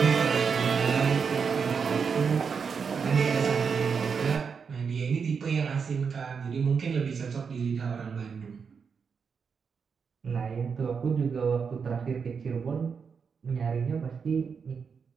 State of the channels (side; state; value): left; quieter; 6.0 dB